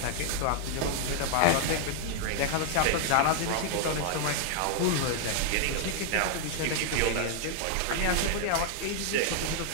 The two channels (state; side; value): different; both; correlation 0.00